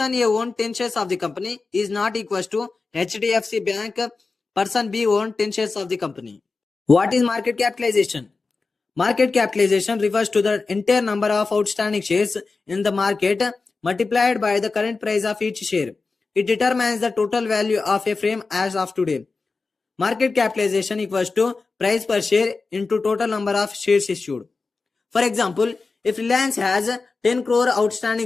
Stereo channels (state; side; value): quieter; right; 4.1 dB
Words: A own 10 shares of the company is not equals to HDFC Bank, person B own 10 shares of the company. What is market capitalization? Market capitalization refers to the entire number of outstanding shares in the market multiplied by the current price of each share. It determines the total value of a firm as of today. Market capitalization equals to price per share into total number of shares issued. For example, if Reliance has 10 crore